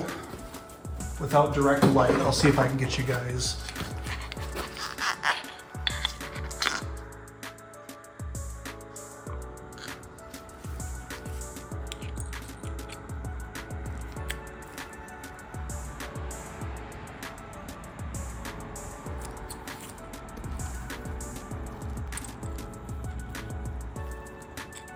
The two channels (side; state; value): both; identical; correlation 1.00